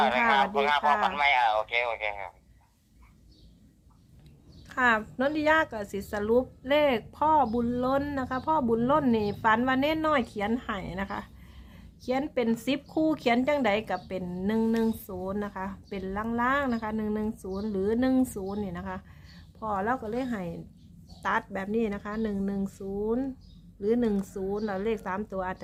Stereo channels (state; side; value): identical; both; correlation 1.00